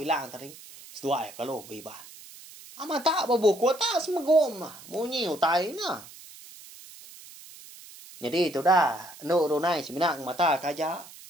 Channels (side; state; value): right; noise; hiss, 18 dB below the sound